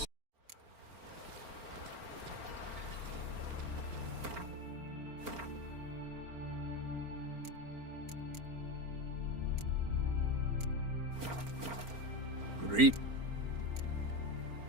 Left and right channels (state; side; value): late; left; 4.4 ms